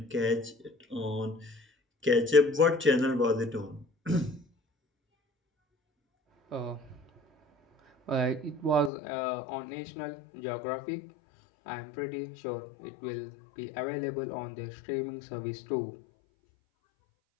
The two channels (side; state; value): right; drops out; at 8.9 s